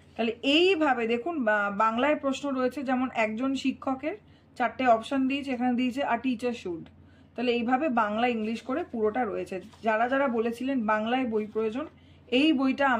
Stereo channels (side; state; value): both; identical; correlation 1.00